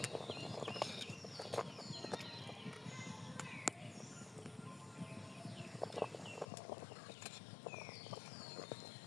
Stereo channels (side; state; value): right; drops out; at 6.5 s